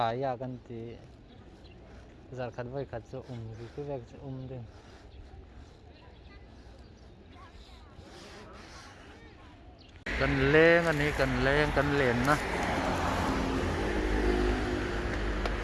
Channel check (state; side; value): identical; both; correlation 1.00